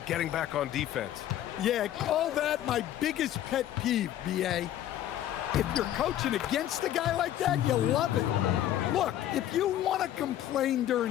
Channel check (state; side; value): quieter; right; 12.1 dB